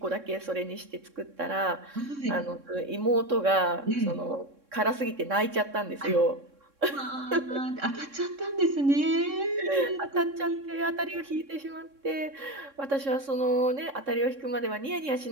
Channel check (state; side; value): late; left; 3.6 ms